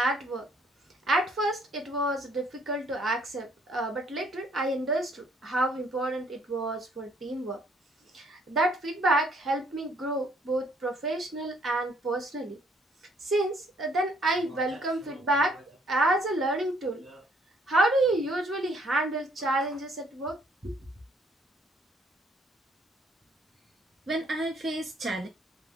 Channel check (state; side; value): normal; both; correlation 0.64